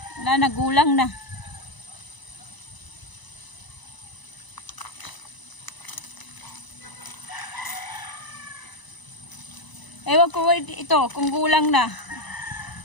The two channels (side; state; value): right; late; 1.0 ms